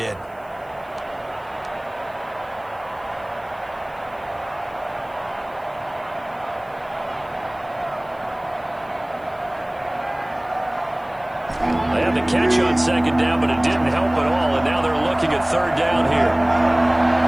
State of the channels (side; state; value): left; noise; hiss, 30 dB below the sound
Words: They had the catch on second down, but it didn't help at all, and now they're looking at third down here.